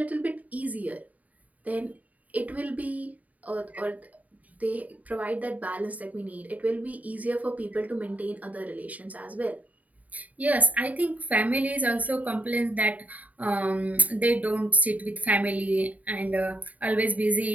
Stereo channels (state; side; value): late; left; 0.072 ms